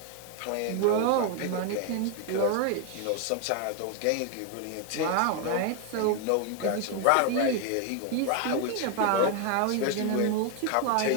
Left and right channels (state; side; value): different; both; correlation 0.00